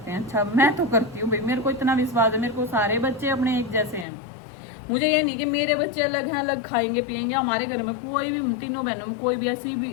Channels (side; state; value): right; drops out; at 4.0 s